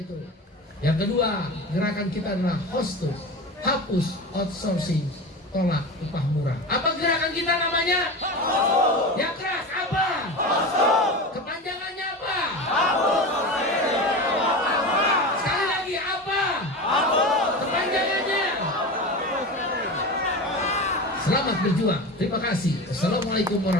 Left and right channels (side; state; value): both; normal; correlation 0.27